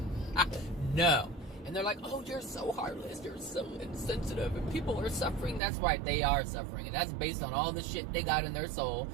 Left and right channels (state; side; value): drops out; left; at 5.6 s